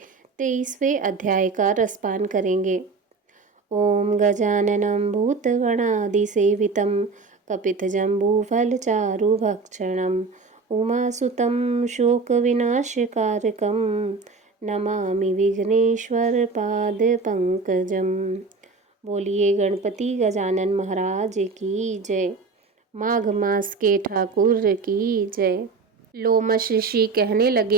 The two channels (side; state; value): left; quieter; 4.3 dB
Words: 23वें अध्याय का रसपान करेंगे। ओम गजाननं भूतगणादिसेवितं कपितजम्बूफलचारुभक्षणं उमासुतं शोकविनाशकारकं नमामि विघ्नेश्वरपादपङ्कजम्। बोलिए गणपति गजानन महाराज की जय। माघ मास के ठाकुर की जय। लोमश ऋषि कहने